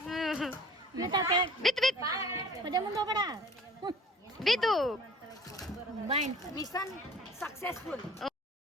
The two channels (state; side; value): normal; both; correlation 0.47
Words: ಬಿತ್ತು ಪದೇ ಮುಂದೆ ಹೋಗಬೇಡ. ಬಿತ್ತು ಮಿಷನ್ ಸಕ್ಸಸ್ಫುಲ್.